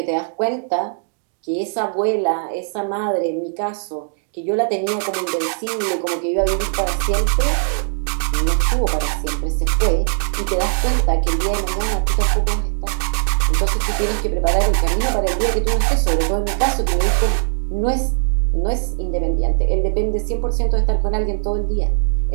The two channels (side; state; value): left; silent; digital silence